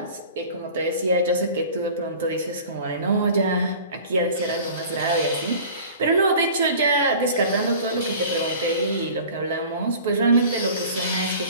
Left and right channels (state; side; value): inverted; both; correlation -0.43